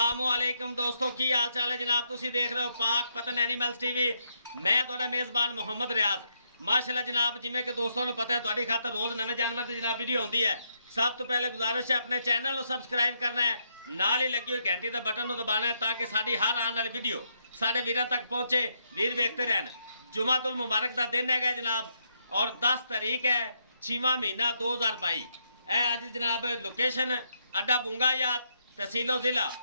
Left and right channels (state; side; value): inverted; both; correlation -0.77